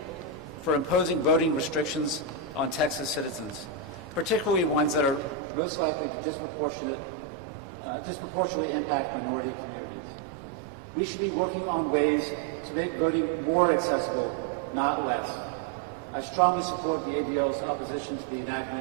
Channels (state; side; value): drops out; left; at 5.4 s